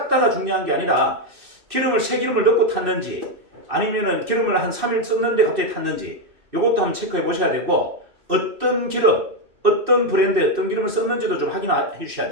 중요한 게 아니라 기름을 새 기름을 넣고 탔는지 아니면은 기름을 한 3일 썼는데 갑자기 탔는지 이것도 한번 체크해 보셔야 되고 어떤 기름, 어떤 브랜드의 어떤 기름을 썼는지도 좀 확인해 주셔야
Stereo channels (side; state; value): left; late; 2.6 ms